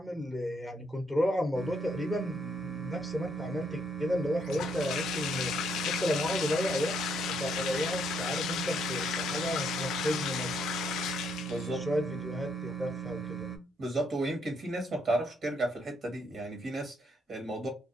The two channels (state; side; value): normal; both; correlation 0.73